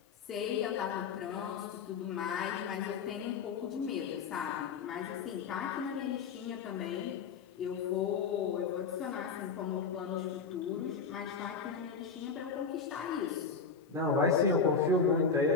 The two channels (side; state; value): right; quieter; 5.4 dB